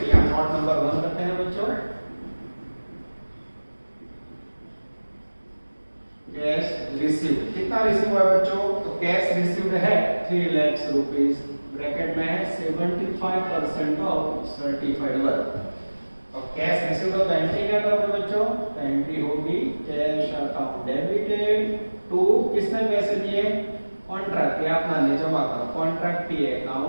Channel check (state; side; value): inverted; both; correlation -1.00